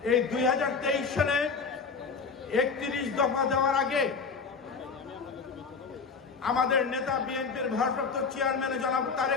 এই 2023 সালে 31 দফা দেওয়ার আগে আমাদের নেতা বিএনপির ভারপ্রাপ্ত চেয়ারম্যান জনাব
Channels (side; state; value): right; quieter; 5.1 dB